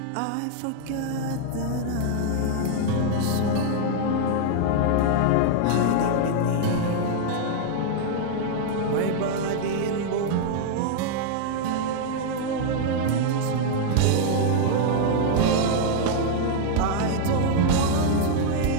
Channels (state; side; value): different; both; correlation -0.01